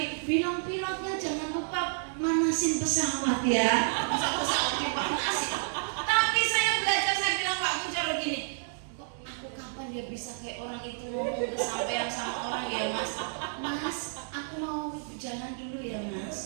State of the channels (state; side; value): silent; left; digital silence